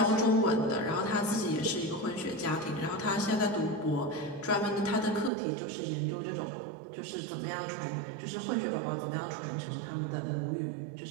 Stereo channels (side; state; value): left; drops out; at 5.3 s